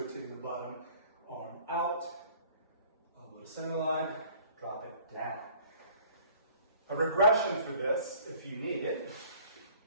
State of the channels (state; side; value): inverted; both; correlation -0.53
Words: the bottom arm out, elbow to center line, drop it down. A regression for this, if you need it,